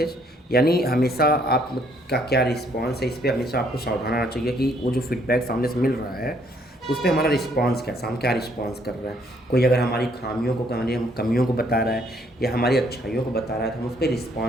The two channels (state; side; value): normal; both; correlation 0.67